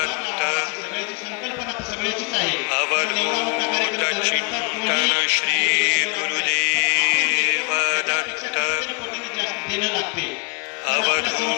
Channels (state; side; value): quieter; right; 34.3 dB